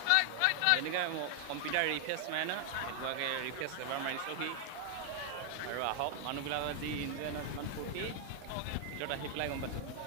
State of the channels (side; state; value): both; different; correlation 0.00